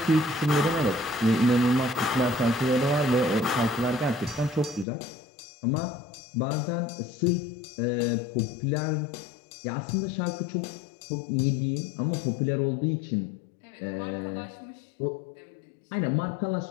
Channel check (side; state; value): right; drops out; at 4.9 s